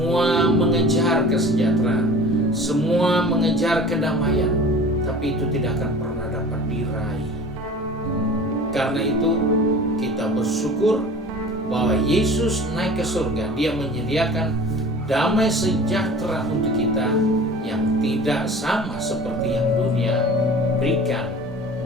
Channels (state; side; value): normal; both; correlation 0.41